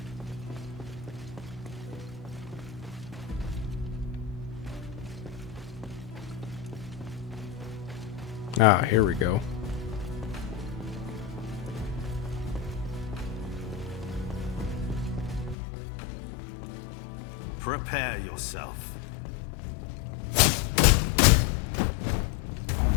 Ah, here we go. Prepare yourself.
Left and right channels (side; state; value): right; drops out; at 15.6 s